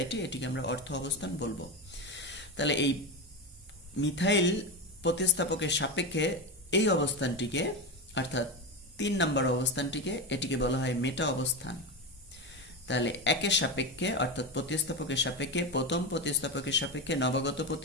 এটিকে আমরা অর্থ অবস্থান বলবো। তাহলে এই মিথাইল প্রতিস্থাপকের সাপেক্ষে এই অবস্থানটিকে অর্থাৎ ৩ নম্বর অবস্থানটিকে এটিকে বলা হয় মেটা অবস্থান। তাহলে একের সাপেক্ষে অর্থাৎ প্রতিস্থাপকের সাপেক্ষে প্রথম প্রতিস্থাপকের সাপেক্ষে নবাগত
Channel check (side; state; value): both; normal; correlation 0.17